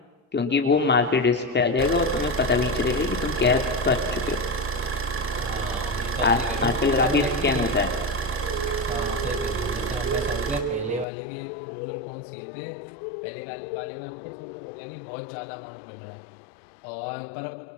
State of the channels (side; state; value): right; drops out; at 11.1 s